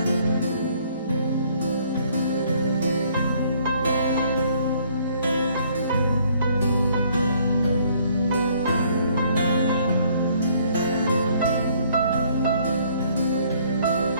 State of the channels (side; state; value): both; inverted; correlation -0.63